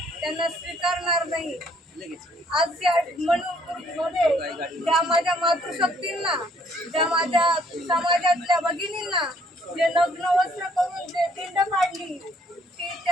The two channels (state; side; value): normal; both; correlation 0.64